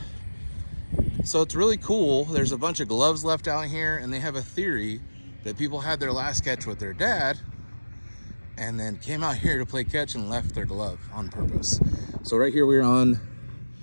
so it's really cool. There's a bunch of gloves left out here, and they have a theory that people had their last catch with their dad and then came out here to play catch and left their glove on purpose. So right here we're on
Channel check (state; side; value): inverted; both; correlation -1.00